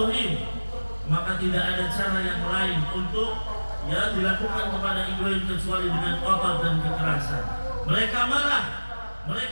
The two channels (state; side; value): inverted; both; correlation -1.00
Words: maka tidak ada cara yang lain untuk dilakukan kepada Ibrahim kecuali dengan kotor dan kekerasan. Mereka marah,